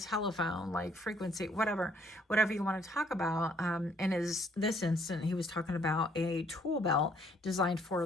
telephone, like frequency, whatever you want to talk about. And this instant, he was talking about a tool belt designed for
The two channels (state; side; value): normal; both; correlation 0.65